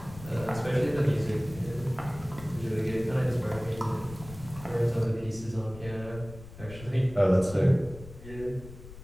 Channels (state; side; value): noise; left; rumble, 15 dB below the sound